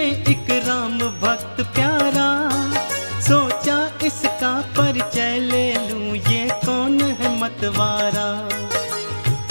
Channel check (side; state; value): both; inverted; correlation -1.00